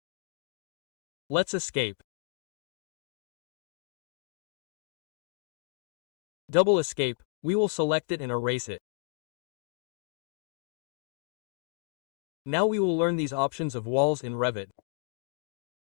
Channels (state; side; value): silent; right; digital silence